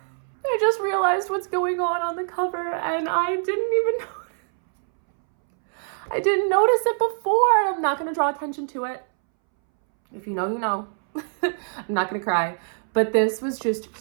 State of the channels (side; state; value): left; silent; 63 dB below the other